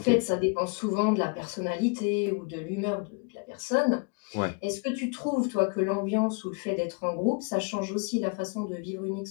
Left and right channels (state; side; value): quieter; right; 32.6 dB